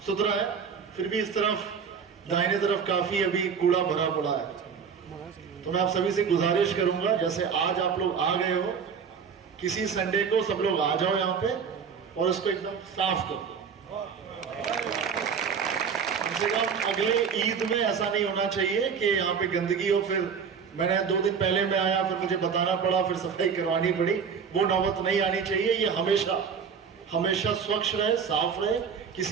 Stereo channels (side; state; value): left; quieter; 6.5 dB